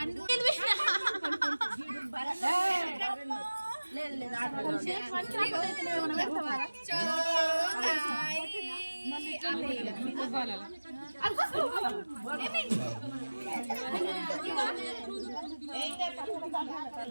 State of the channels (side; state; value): both; inverted; correlation -1.00